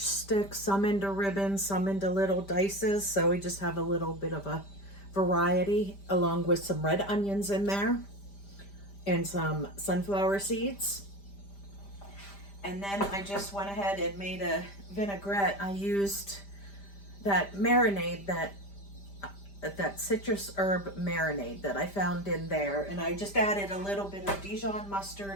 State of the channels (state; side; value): late; right; 5.1 ms